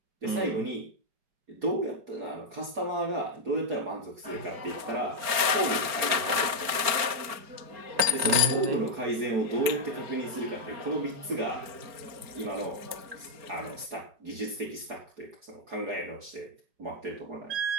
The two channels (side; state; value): left; late; 4.4 ms